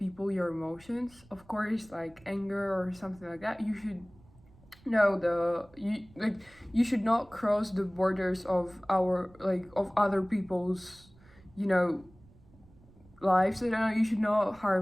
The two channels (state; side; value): noise; right; rumble, 26 dB below the sound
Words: your emotions. Of course, like anger or something like that, you should know you should not cross the borders of of other people's, you know, lives. I don't know, you should not